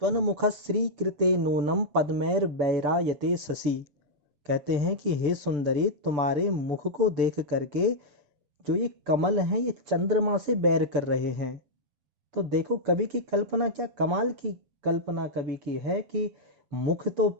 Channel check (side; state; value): left; late; 6.8 ms